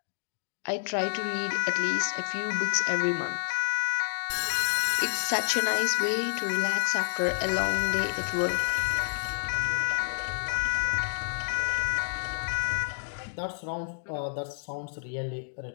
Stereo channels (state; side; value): silent; right; digital silence